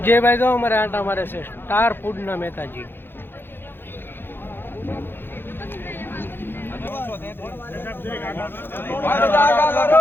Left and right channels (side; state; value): right; late; 0.10 ms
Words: જે ભાઈ તો અમારે આટા મારે છે સ્ટાર ફૂડના મહેતાજી।